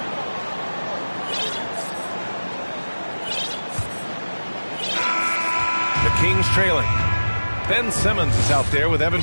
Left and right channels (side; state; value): both; inverted; correlation -1.00